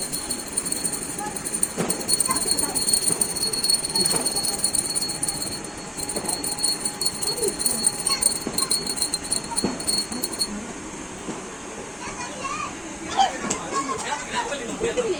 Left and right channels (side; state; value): both; identical; correlation 1.00